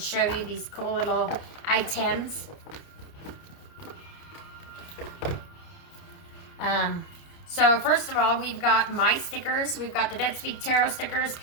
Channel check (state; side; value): late; right; 29 ms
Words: you these cool little items. So first of all, we've got my stickers. We've got the Dead Speak Tarot stickers.